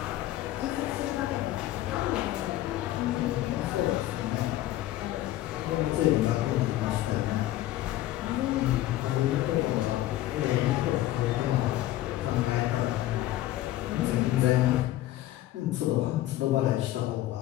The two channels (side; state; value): right; quieter; 14.8 dB